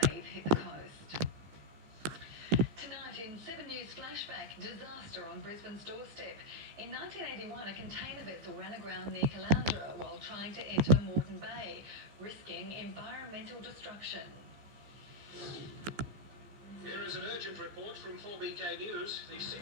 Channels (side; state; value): left; late; 14 ms